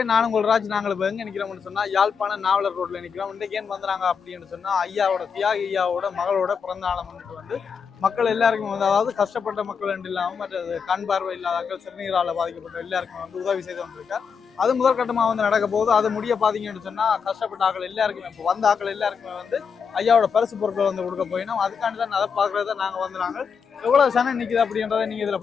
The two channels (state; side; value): quieter; right; 6.2 dB